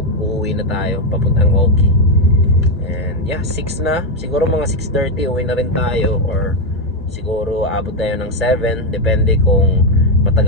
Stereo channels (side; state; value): both; normal; correlation 0.05